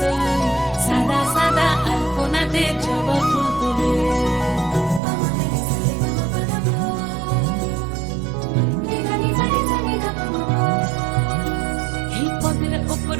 সাদা সাদা আলপনাতে জবা ফুল তুলে। এই পথে উপর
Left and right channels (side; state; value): left; drops out; at 5.0 s